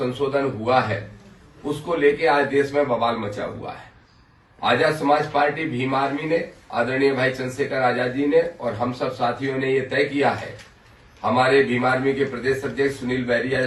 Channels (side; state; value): both; identical; correlation 1.00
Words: हुआ है उसको लेके आज देश में बवाल मचा हुआ है। आजाद समाज पार्टी भीम आर्मी ने, आदरणीय भाई चंद्रशेखर आजाद जी ने और हम सब साथियों ने ये तय किया है, हमारे भीम आर्मी के प्रदेश अध्यक्ष सुनील